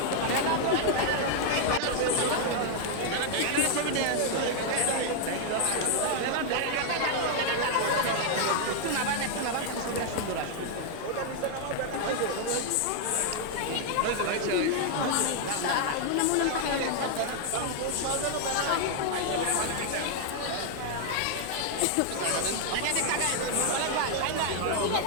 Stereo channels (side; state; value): both; different; correlation 0.00